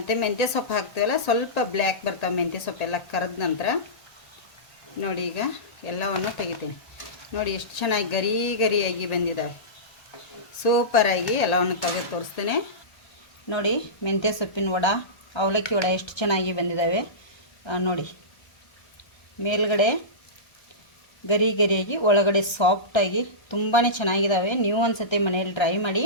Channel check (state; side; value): late; right; 1.3 ms